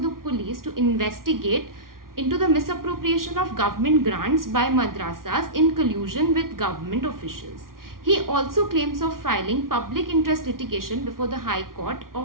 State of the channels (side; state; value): left; late; 0.92 ms